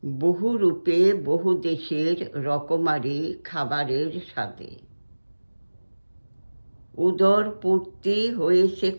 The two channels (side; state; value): both; inverted; correlation -1.00